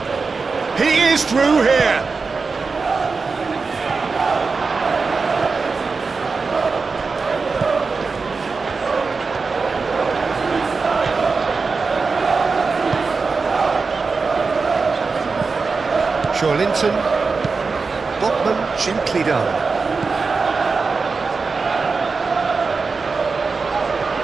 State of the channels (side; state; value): left; quieter; 4.5 dB